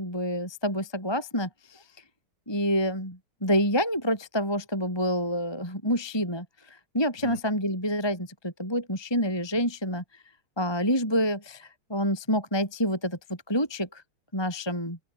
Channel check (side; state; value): right; late; 1.2 ms